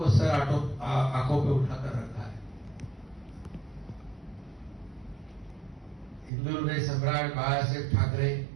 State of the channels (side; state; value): left; drops out; at 6.3 s